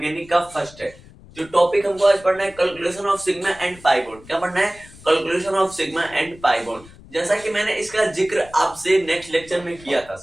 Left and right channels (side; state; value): left; noise; rumble, 22 dB below the sound